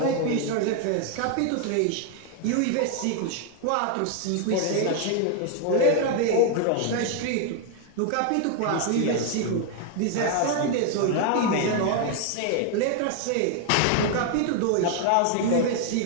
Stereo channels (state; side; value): different; both; correlation 0.00